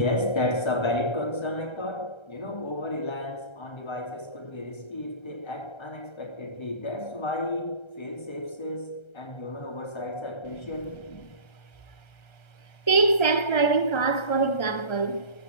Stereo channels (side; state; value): right; late; 1.3 ms